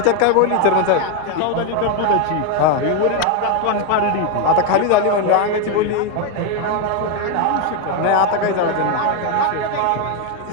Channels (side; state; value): both; different; correlation 0.01